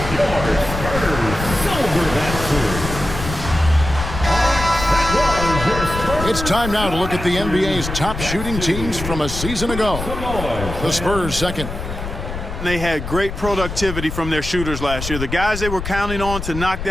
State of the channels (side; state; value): left; noise; rumble, 7 dB below the sound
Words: your Spurs silver that series. It's time now to look at the NBA's top shooting teams from a season ago. The Spurs second. They had great productivity from their shooters last year. The guys they were counting on to knock